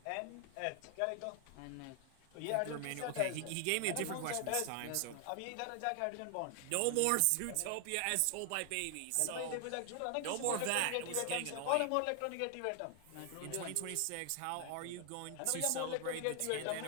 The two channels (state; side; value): different; both; correlation 0.00